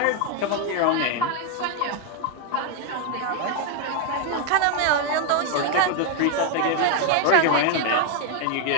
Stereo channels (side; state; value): both; different; correlation 0.01